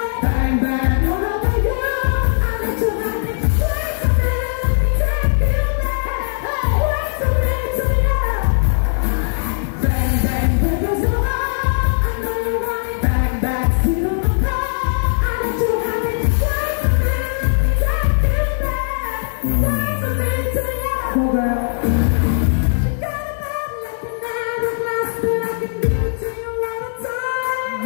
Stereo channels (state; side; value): silent; right; digital silence